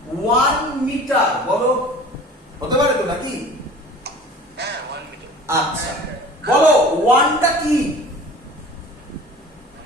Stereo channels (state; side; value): normal; both; correlation 0.43